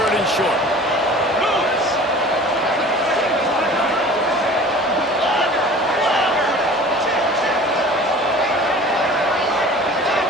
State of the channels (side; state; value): both; normal; correlation 0.43